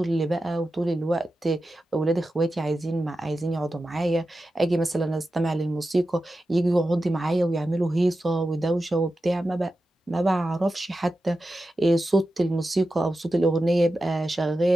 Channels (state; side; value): normal; both; correlation 0.92